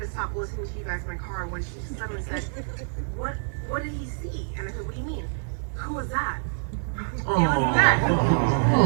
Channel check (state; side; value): silent; left; digital silence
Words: to stop listening to you guys in my car when she suddenly said, what did he see? And I said, what do you mean? Who was that? It was that.